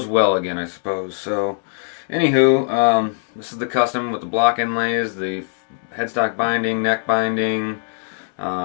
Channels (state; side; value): silent; right; digital silence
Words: well again, I suppose. So anywho, this is the custom with the block inlays, the headstock binding, neck binding,